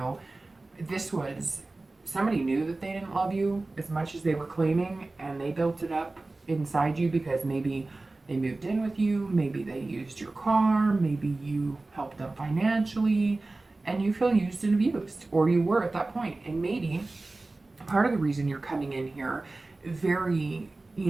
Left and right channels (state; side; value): quieter; left; 3.2 dB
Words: this was somebody knew that they didn't love you as much as they were claiming, and they built it up inside you because maybe they moved in with you, maybe they used your car, maybe you helped them financially, and you feel used and abused, or you were at that point. And maybe part of the reason you're coming in here very,